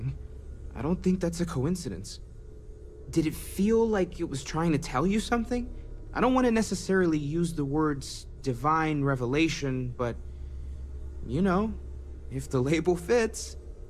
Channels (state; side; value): identical; both; correlation 1.00